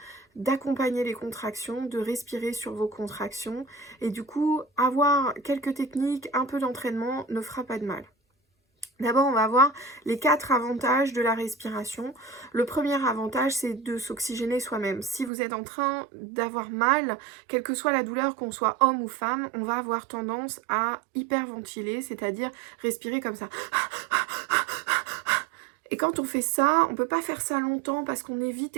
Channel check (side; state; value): left; drops out; at 15.3 s